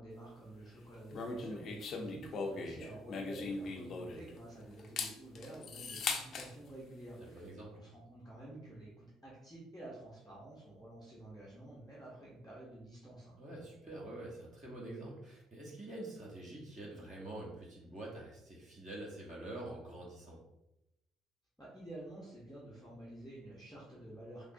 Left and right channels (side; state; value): both; normal; correlation 0.70